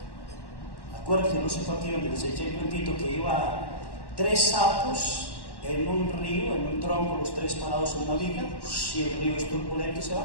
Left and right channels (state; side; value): late; right; 1.1 ms